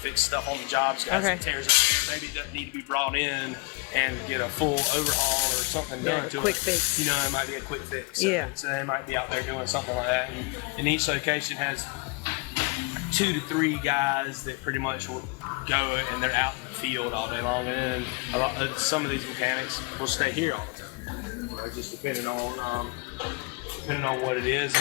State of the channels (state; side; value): quieter; right; 29.1 dB